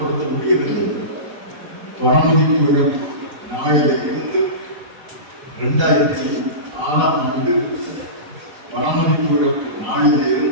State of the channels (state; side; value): late; left; 4.0 ms